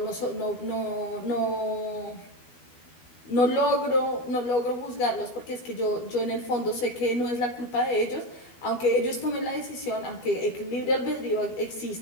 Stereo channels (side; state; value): right; late; 12 ms